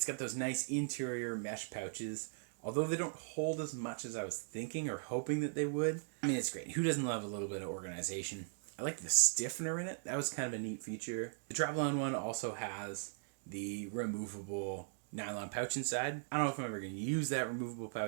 got those nice interior mesh pouches. Although they don't hold as much as I was thinking or hoping that they would. I mean, it's great. Who doesn't love a little bit of organization? I like the stiffener in it. That was kind of a neat feature. The Travelon one also has the removable nylon pouch inside. I don't know if I'm ever going to use that removable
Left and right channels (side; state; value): left; silent; digital silence